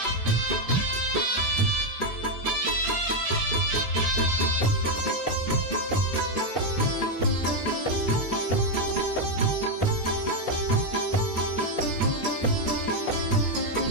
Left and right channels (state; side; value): late; right; 3.5 ms